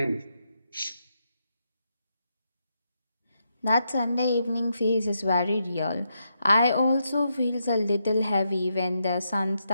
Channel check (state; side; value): inverted; both; correlation -0.82